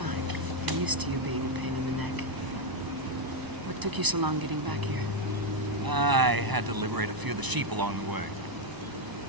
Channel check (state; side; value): late; left; 1.0 ms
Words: I'm used to you being a pain in the neck. What took you so long getting back here? I had to liberate a few of the sheep along the way.